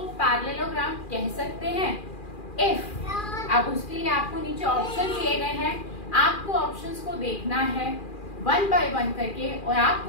पैरेललोग्राम कह सकते हैं? इफ। अब उसके लिए आपको नीचे ऑप्शन दिए गए हैं, आपको ऑप्शंस को देखना है 1 बाय 1 करके और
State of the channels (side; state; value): right; late; 2.4 ms